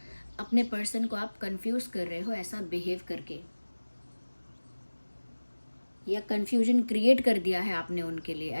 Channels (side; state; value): both; inverted; correlation -1.00